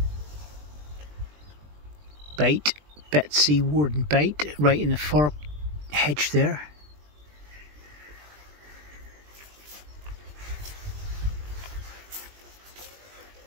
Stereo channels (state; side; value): late; left; 20 ms